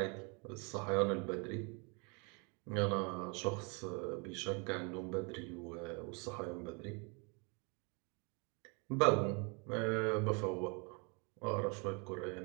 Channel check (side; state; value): left; quieter; 32.8 dB